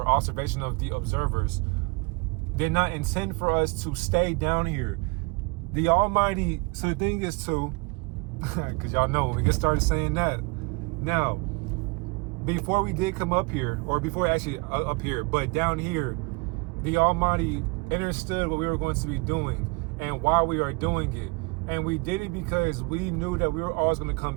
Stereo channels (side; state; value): left; quieter; 29.2 dB